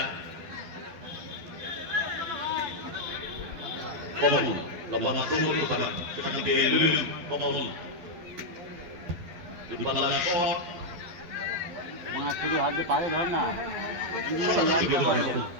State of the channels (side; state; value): left; late; 12 ms